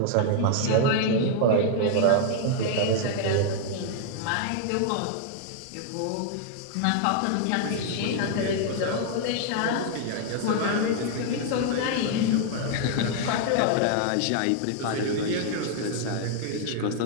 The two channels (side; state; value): both; different; correlation 0.00